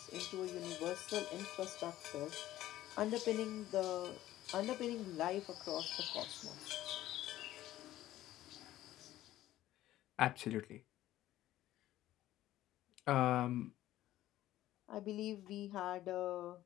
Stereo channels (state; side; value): quieter; right; 14.4 dB